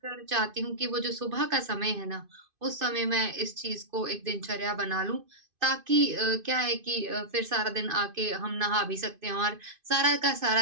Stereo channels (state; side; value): late; left; 2.5 ms